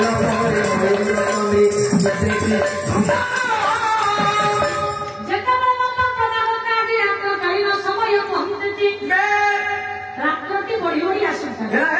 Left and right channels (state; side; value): identical; both; correlation 1.00